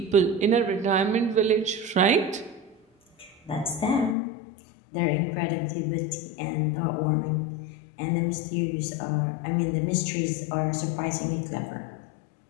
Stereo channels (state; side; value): drops out; right; at 4.2 s